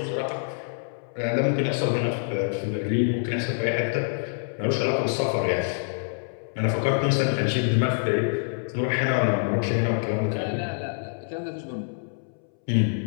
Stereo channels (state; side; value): silent; right; 61 dB below the other